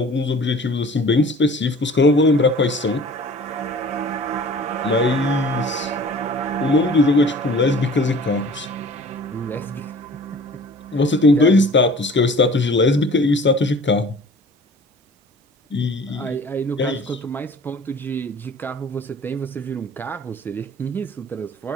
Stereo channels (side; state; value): both; normal; correlation 0.46